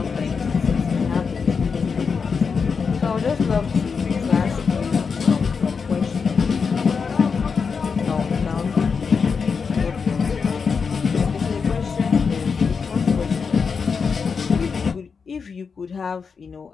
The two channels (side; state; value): right; quieter; 5.6 dB